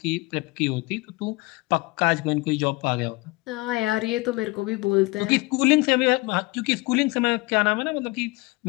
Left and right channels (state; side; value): quieter; right; 23.9 dB